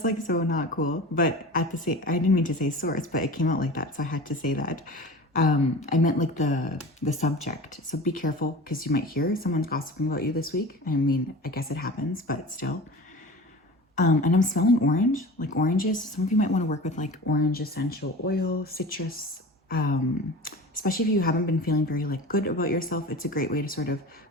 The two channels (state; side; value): normal; both; correlation 0.35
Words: like so not cool. But at the same, I didn't mean to say source, but it came out like that. So I had to say that. I meant like the subject. So be careful because you might hear someone's gossiping about you this week. I mean, I guess it happens, but still. And I'm smelling orange, like oranges. Some of you might want to work with like orange essential oil, citrus, especially if you haven't been feeling very like good about yourself. It's a great way to sort of